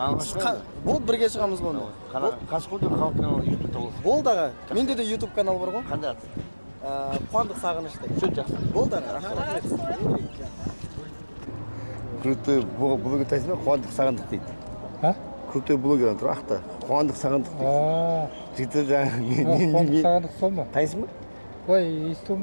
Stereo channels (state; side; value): inverted; both; correlation -1.00